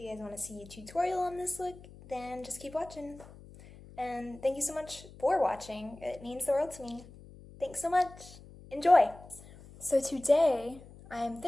you guys want to see a tutorial on this look, then just keep watching. And thank you so much for watching. It means the world to me. Thanks so much. Enjoy! So today, I'm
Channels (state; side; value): noise; left; hum, 19 dB below the sound